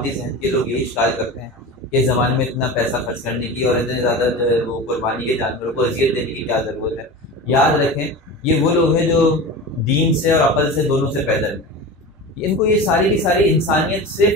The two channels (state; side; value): normal; both; correlation 0.30